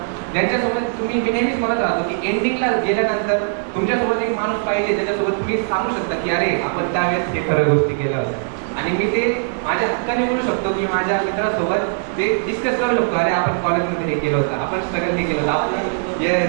ज्यांच्यासोबत तुम्ही, मी नेहमीच म्हणत राहतो की एंडिंगला गेल्यानंतर तुमच्यासोबत एक माणूस पाहिजे ज्याच्यासोबत तुम्ही सांगू शकता की अरे आपण त्यावेळेस हे खरं गोष्टी केल्या होत्या. आणि मी ते माझ्या हक्काने बोलू शकतो की माझ्या मित्रासोबत ते डिस्कस करू शकतो, अरे आपण कॉलेजमध्ये हे केलं होतं, आपण स्ट्रगल हे केलं होतं, आपण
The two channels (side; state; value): left; silent; 64 dB below the other